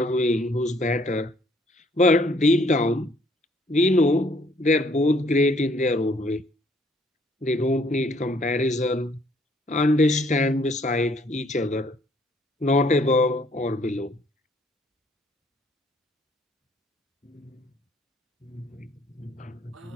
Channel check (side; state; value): both; normal; correlation 0.63